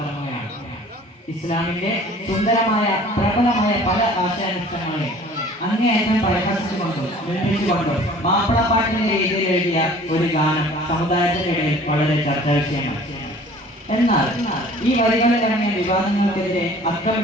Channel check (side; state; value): both; normal; correlation 0.49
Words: ഇസ്ലാമിന്റെ സുന്ദരമായ പ്രബലമായ പല ആശയാനുഷ്ഠാനങ്ങളെ അങ്ങേയറ്റം പരിഹസിച്ചുകൊണ്ടും നിർമ്മിച്ചുകൊണ്ടും മാപ്പിളപ്പാട്ടിന്റെ രീതിയിൽ എഴുതിയ ഒരു ഗാനം സമുദായത്തിന്റെ ഇടയിൽ വളരെ ചർച്ചാ വിഷയമാണ്. എന്നാൽ ഈ വരികളിൽ ഇറങ്ങിയ വിവാദങ്ങൾക്കെതിരെ